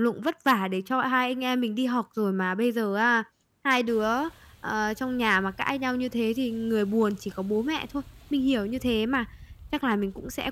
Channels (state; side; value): identical; both; correlation 1.00